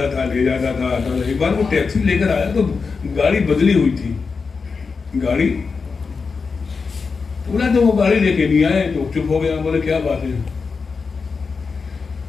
تھا، لے جاتا تھا، آتا تھا۔ ایک بار وہ ٹیکسی لے کر آیا تو گاڑی بدلی ہوئی تھی، گاڑی پورا، تو وہ گاڑی لے کے نہیں آئے تو چپ ہو گیا۔ بولے کیا بات ہے؟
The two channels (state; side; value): quieter; right; 4.9 dB